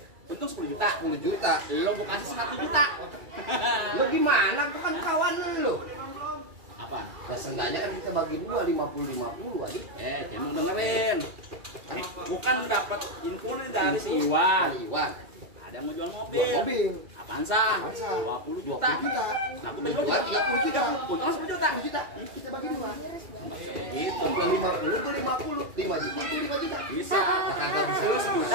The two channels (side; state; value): left; late; 2.3 ms